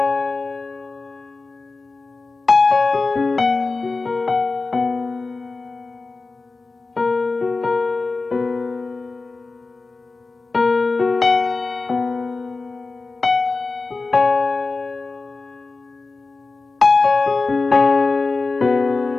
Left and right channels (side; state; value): right; quieter; 3.8 dB